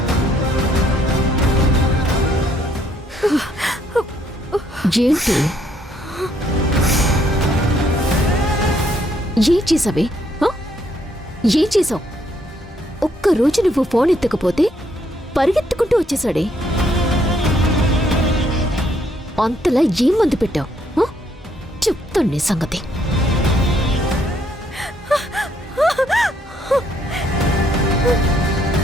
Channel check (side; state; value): both; normal; correlation 0.70